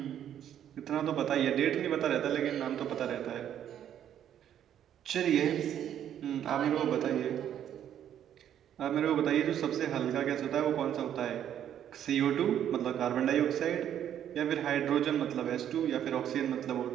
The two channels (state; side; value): quieter; left; 10.1 dB